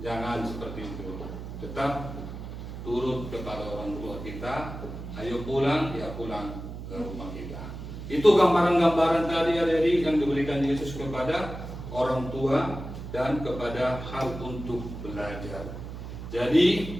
Jangan seperti itu. Tetap turut kepada orang tua kita. Ayo pulang, ya pulang ke rumah kita. Itu gambaran-gambaran tadi adik-adik yang diberikan Yesus kepada orang tua dan kepada hal untuk belajar. Jadi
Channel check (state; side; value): noise; right; hum, 9 dB below the sound